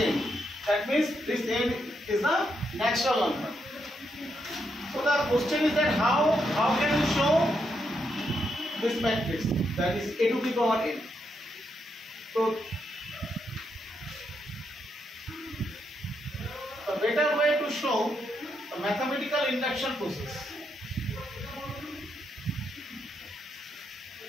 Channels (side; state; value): both; normal; correlation 0.80